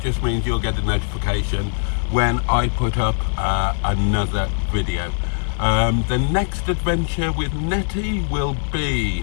just means you'll get a notification when I put up another video. The next adventure with Netty will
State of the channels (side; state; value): right; silent; 65 dB below the other